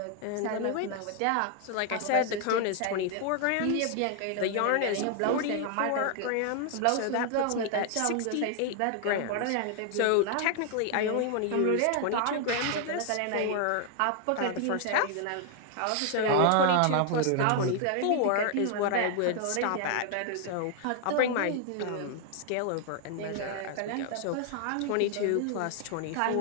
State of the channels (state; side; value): different; both; correlation 0.00